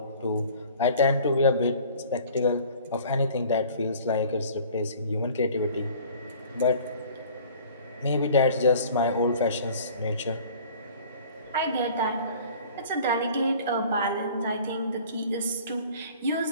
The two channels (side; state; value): both; inverted; correlation -0.48